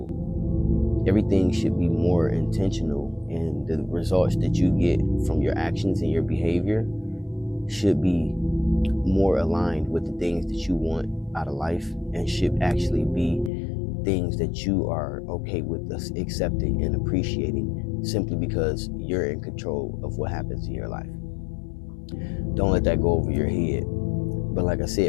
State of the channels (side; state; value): right; drops out; at 13.5 s